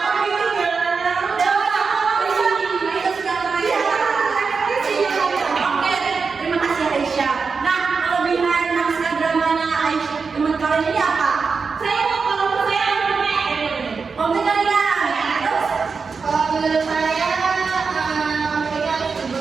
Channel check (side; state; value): left; quieter; 5.0 dB